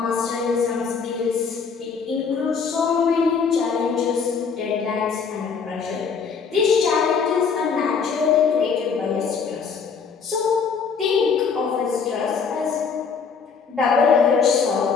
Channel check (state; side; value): quieter; right; 5.8 dB